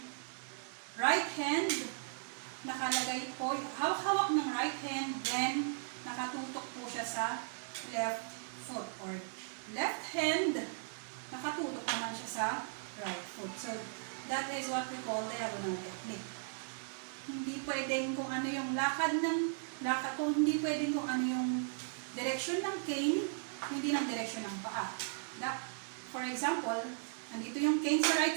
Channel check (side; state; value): left; silent; digital silence